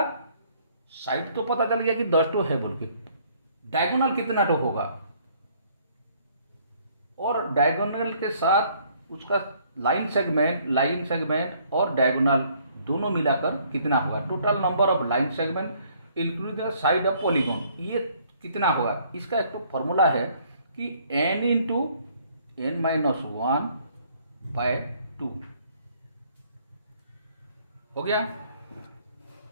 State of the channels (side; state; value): both; inverted; correlation -0.63